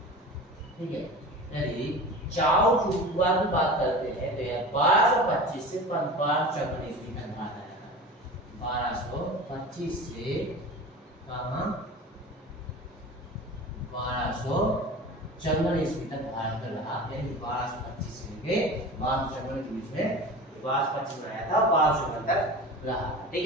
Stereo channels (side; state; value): both; normal; correlation 0.34